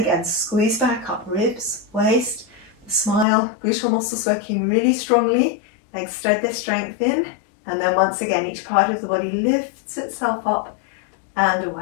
squeeze back up, ribs, waist, the smile, gluteal muscles working really strongly. Legs thread their strength in. And then once again, each part of the body lifts itself up and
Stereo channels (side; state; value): right; drops out; at 3.2 s